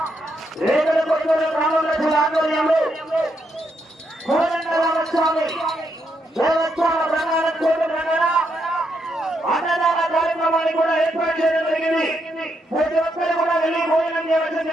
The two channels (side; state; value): both; normal; correlation 0.79